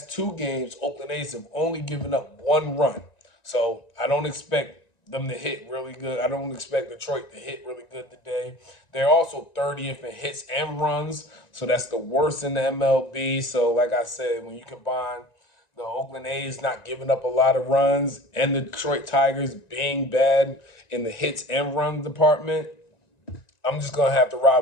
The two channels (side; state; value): right; late; 1.9 ms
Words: 2 games, Oakland A's have only given up 1 run. So I don't expect them to hit really good. I don't expect Detroit to hit really good today. They're also 30th in hits and runs, so that's the worst in the MLB. So like I said, when you combine the Oakland A's not giving up a lot of runs and the Detroit Tigers being bad in the hits and run department, I'm just going to have to